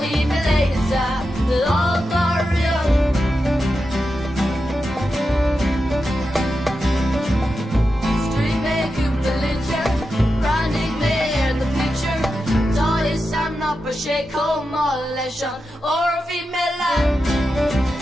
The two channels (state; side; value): normal; both; correlation 0.89